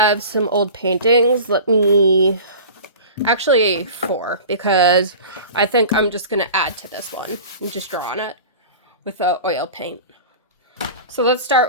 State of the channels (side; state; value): both; inverted; correlation -0.37